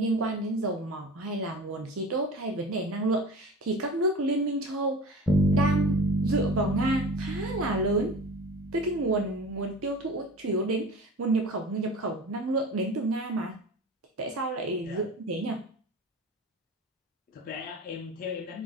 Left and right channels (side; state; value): both; normal; correlation 0.36